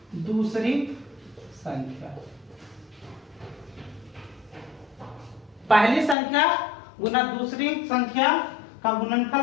दूसरी संख्या। पहली संख्या गुना दूसरी संख्या का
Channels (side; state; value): right; drops out; at 6.2 s